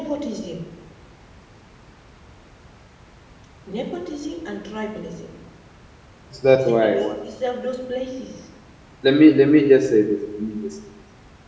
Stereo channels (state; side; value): identical; both; correlation 1.00